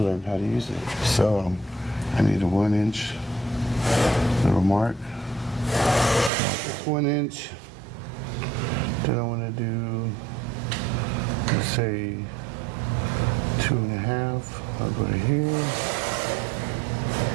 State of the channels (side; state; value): left; drops out; at 6.3 s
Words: how to use it. So, I need a 1-inch little mark. It's 1 inch. Then I want to do, let's say, 2.5. I'll go to here.